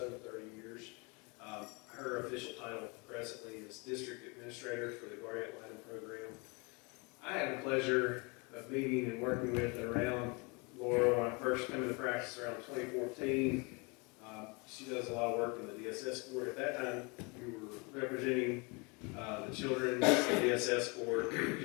30 years. Her official title presently is District Administrator for the Guardian Litem program. I had the pleasure of meeting and working with and around Laura when I first came into practice around 2014. She does a lot of work in the DSS court. At that time, you were representing the children in the DSS court, the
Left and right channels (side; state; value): right; quieter; 30.0 dB